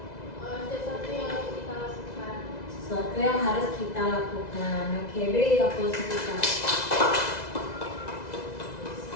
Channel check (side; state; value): right; late; 2.0 ms